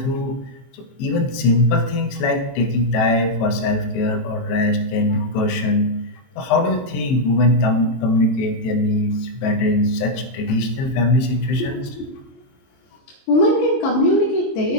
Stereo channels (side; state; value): right; late; 22 ms